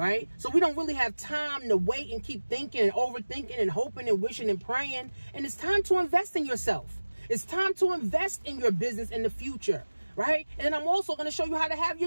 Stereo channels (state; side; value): inverted; both; correlation -1.00